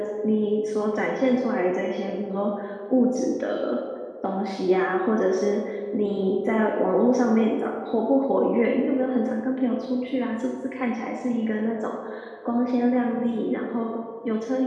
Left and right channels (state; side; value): identical; both; correlation 1.00